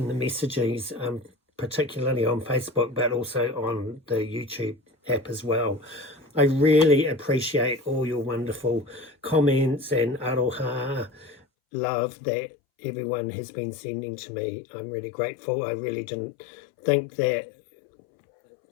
messages, particularly on Facebook, but also on the YouTube app as well. I really appreciate all your wonderful comments and aroha love that everyone has been sending to me. I'm really grateful. I really didn't think that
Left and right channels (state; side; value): drops out; right; at 11.4 s